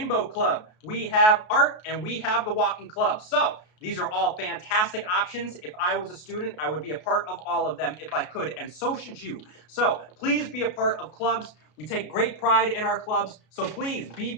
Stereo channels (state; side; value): late; right; 33 ms